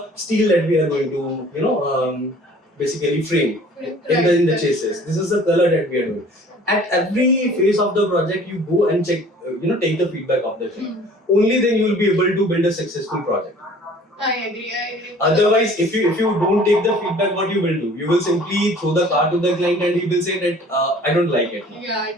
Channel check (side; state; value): both; normal; correlation 0.50